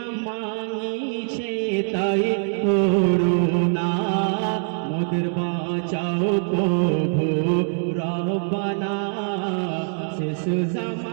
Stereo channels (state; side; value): silent; left; digital silence